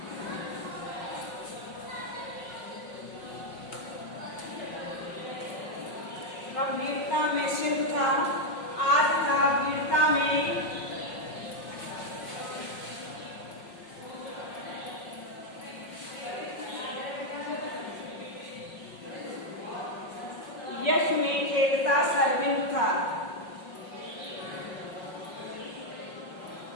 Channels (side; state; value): right; late; 5.5 ms